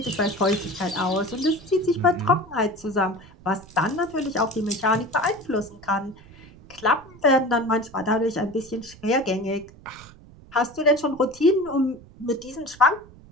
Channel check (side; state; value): right; noise; rumble, 22 dB below the sound